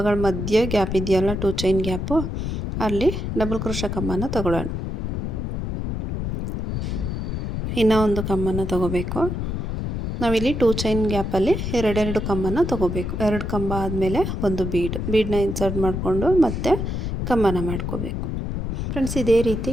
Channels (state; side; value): noise; left; rumble, 3 dB below the sound